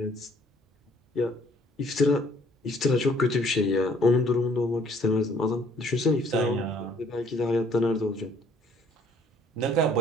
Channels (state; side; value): normal; both; correlation 0.59